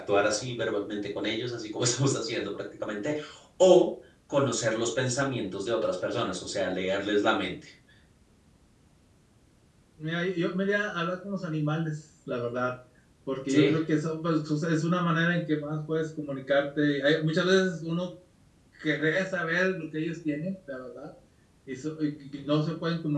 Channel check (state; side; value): identical; both; correlation 1.00